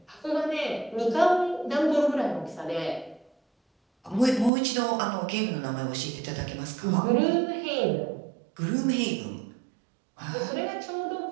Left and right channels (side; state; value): left; drops out; at 4.5 s